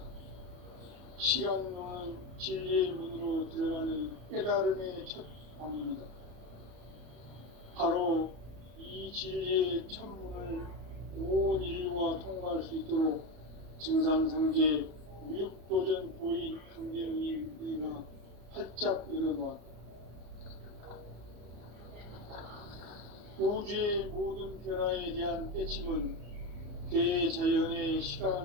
시간론은 진리의 문으로 들어가는 깨달음의 첫 방문이다. 바로 이 진리의 첫 문을 온 인류가 통과할 수 있도록 증산상제 미륵도전 도인 강대훈이 우리가 활짝 열어놓았다. 우주의 모든 변화에 대한 깨침은 대자연의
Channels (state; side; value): late; left; 34 ms